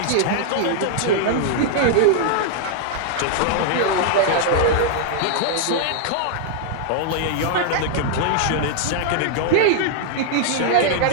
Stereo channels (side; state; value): both; different; correlation -0.01